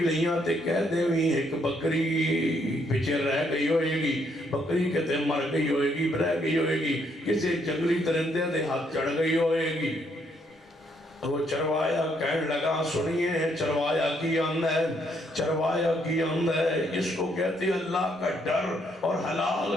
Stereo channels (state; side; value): normal; both; correlation 0.72